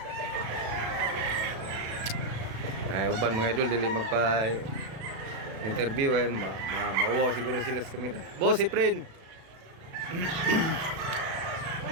Ay uban mga idol dili magpa interview ay mauwaw siguro sila sa kamera. Boss Efren.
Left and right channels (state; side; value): late; left; 36 ms